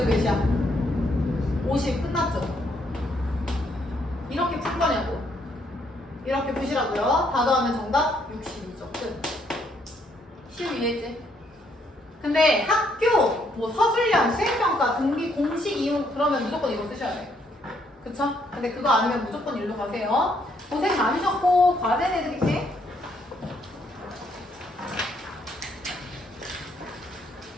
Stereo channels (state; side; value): normal; both; correlation 0.71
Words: 몇이야? 50. 끝났죠? 이렇게 풀 거냐고. 이렇게 푸시라고요. 다 더하면 정답 62죠. 끝. 쉬우 이해했지? 근데 학교, 뭐 서술형, 수행평가, 등비, 공식 이용 그러면 무조건 이거 쓰셔야 돼. 그쵸? 근데 그거 아니면 무조건 일로 가세요. 고생 많으셨고 과제 내드릴게.